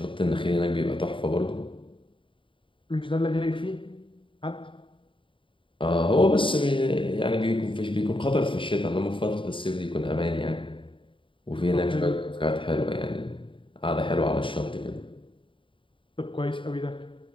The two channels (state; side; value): late; right; 0.25 ms